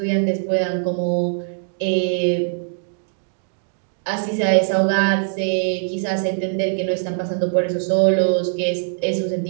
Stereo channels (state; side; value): silent; left; digital silence